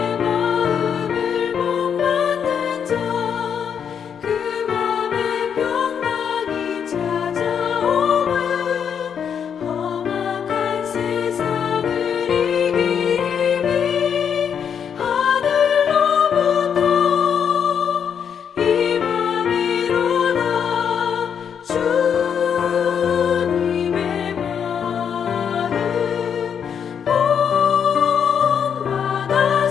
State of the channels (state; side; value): quieter; right; 7.7 dB